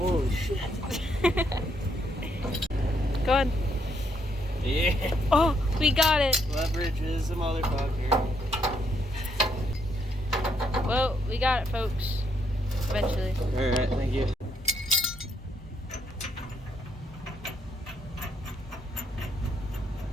shit. Go ahead. Yeah. Oh, we got it. Leverage is a motherfucker. Well, we got it, folks. Eventually. Alright, thank you.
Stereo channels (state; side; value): normal; both; correlation 0.74